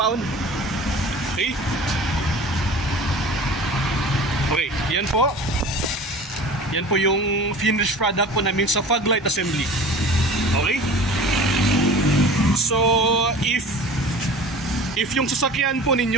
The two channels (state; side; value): normal; both; correlation 0.40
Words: Okay? Okay, yan po. Yan po yung finished product po namin sa fog light assembly. Okay? So, if yung sasakyan po